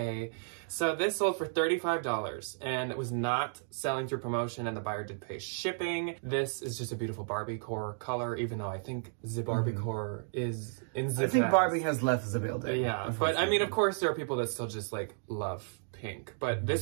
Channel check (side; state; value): left; silent; digital silence